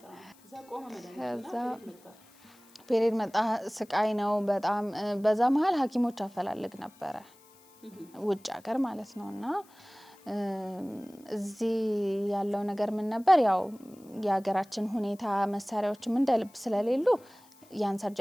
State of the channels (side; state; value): left; noise; hiss, 28 dB below the sound